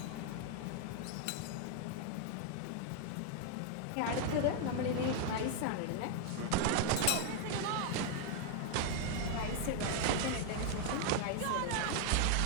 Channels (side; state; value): both; different; correlation 0.00